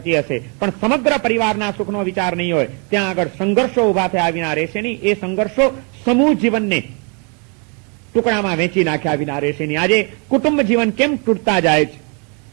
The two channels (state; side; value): quieter; left; 35.9 dB